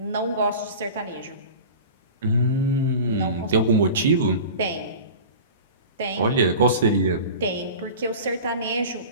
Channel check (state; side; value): inverted; both; correlation -0.36